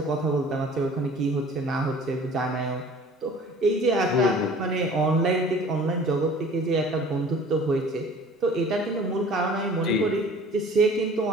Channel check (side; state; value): both; normal; correlation 0.48